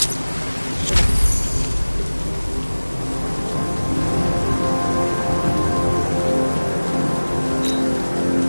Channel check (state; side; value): inverted; both; correlation -1.00